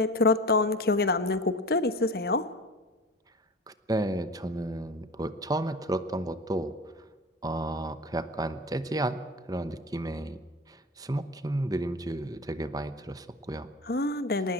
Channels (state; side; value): normal; both; correlation 0.34